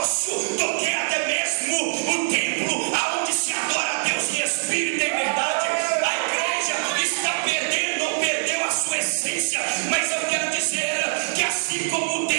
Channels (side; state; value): left; silent; 57 dB below the other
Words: do que até mesmo o templo aonde se adora a Deus em espírito e em verdade. A igreja está perdendo ou perdeu a sua essência, mas eu quero dizer que assim como